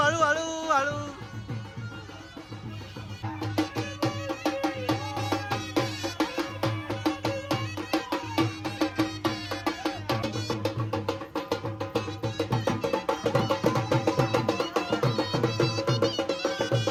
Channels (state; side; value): identical; both; correlation 1.00